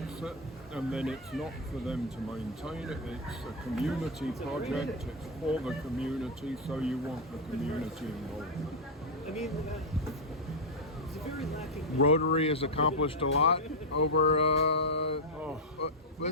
it, and then it's not for them to maintain it. It's a community project. It's for the community, so you want the community involvement. Rotary has accomplished a lot over,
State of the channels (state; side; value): normal; both; correlation 0.01